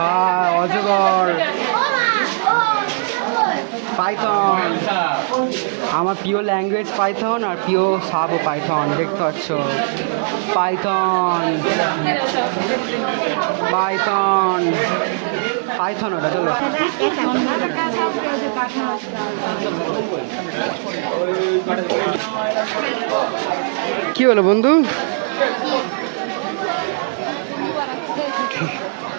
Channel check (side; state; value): left; silent; digital silence